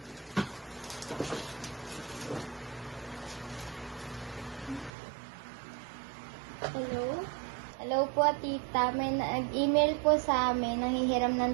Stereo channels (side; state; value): left; drops out; at 4.9 s